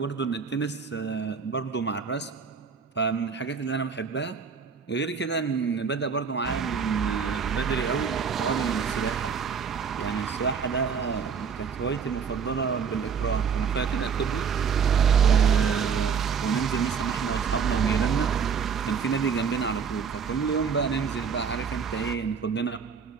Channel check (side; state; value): left; quieter; 6.3 dB